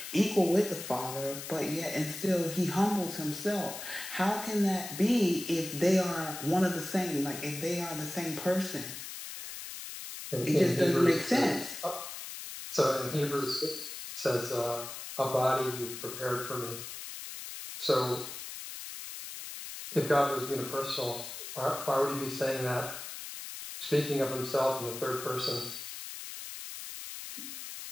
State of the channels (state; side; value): noise; left; hiss, 9 dB below the sound